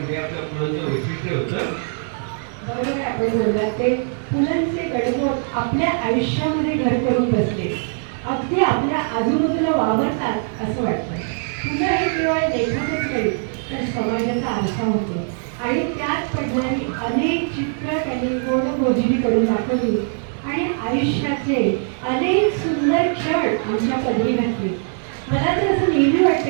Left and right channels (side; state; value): left; silent; 65 dB below the other